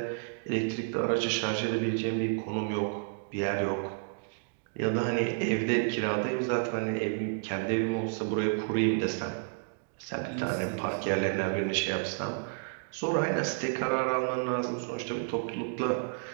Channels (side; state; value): left; silent; digital silence